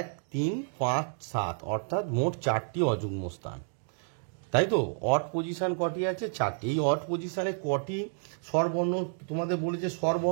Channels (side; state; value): left; silent; 58 dB below the other